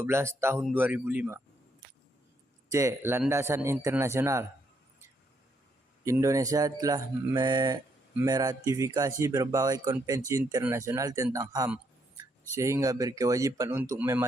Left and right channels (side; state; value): both; normal; correlation 0.74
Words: Tahun 2005. C. Landasan internasional. Indonesia telah meratifikasi berbagai konvensi internasional tentang HAM, sehingga berkewajiban untuk